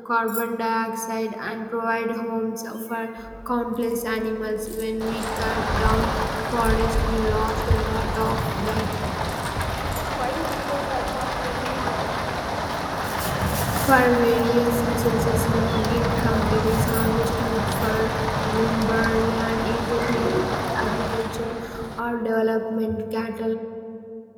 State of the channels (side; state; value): both; identical; correlation 1.00